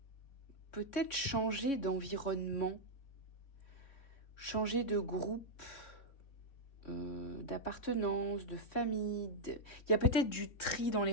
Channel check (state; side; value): late; right; 3.6 ms